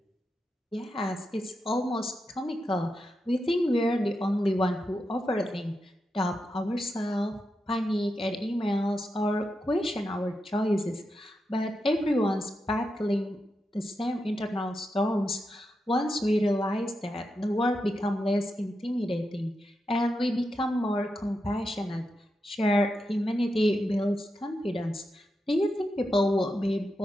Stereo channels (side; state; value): both; normal; correlation 0.87